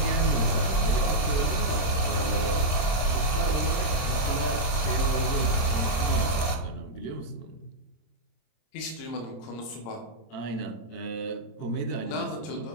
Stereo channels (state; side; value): late; right; 26 ms